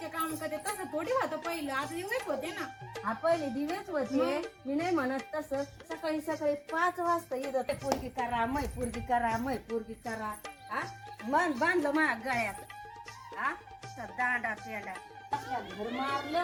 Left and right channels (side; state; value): both; identical; correlation 1.00